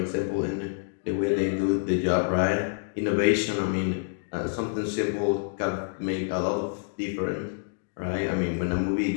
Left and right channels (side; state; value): right; silent; digital silence